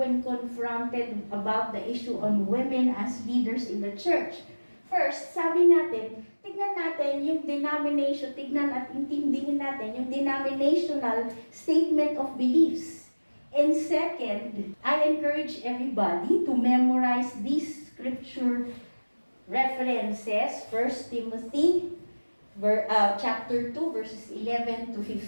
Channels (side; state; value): both; inverted; correlation -1.00